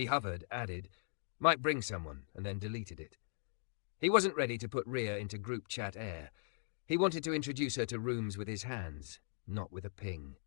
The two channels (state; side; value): silent; right; digital silence